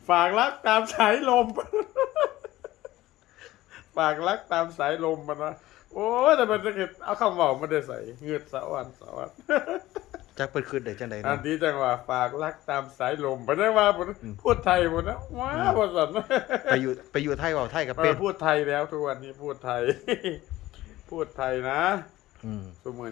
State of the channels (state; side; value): quieter; right; 16.4 dB